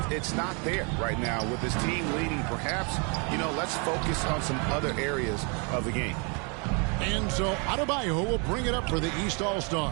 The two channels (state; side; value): quieter; left; 34.4 dB